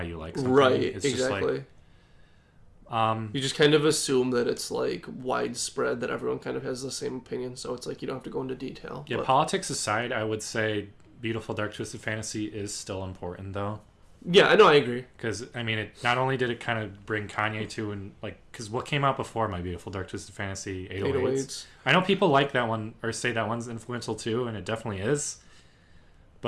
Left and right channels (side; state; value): both; identical; correlation 1.00